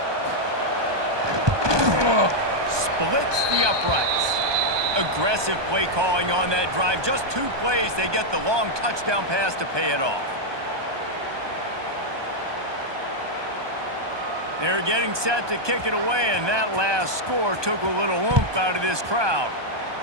Splits the uprights. Aggressive play calling on that drive. Just 2 plays, they get the long touchdown pass to pay it off. They're getting set to kick it away, and that last score took a little oomph out of this crowd.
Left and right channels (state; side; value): late; left; 1.2 ms